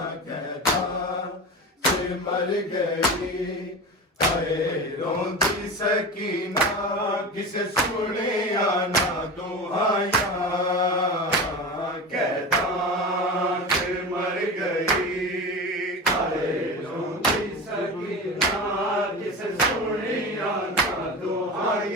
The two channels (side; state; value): both; normal; correlation 0.27